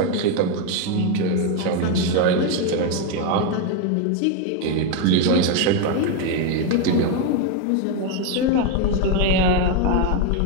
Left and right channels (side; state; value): both; different; correlation 0.02